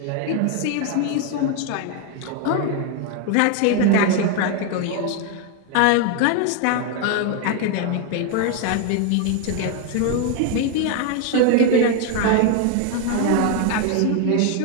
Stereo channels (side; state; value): both; different; correlation 0.01